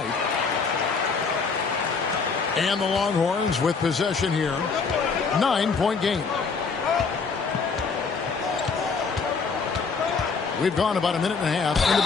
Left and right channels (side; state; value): right; quieter; 5.0 dB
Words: And the Longhorns with possession here. 9-point game. We've gone about a minute and a half into